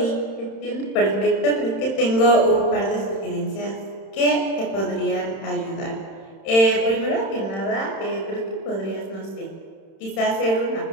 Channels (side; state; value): right; late; 31 ms